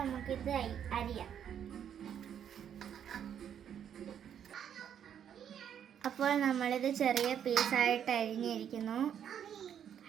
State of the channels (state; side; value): quieter; left; 9.0 dB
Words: അരിയാം. അപ്പോൾ നമ്മളിത് ചെറിയ പീസായിട്ട് അരിഞ്ഞിരിക്കുന്നു.